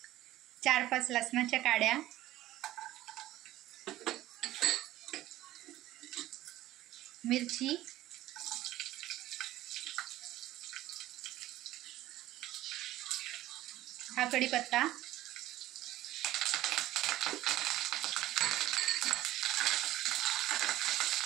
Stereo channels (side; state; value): left; quieter; 15.2 dB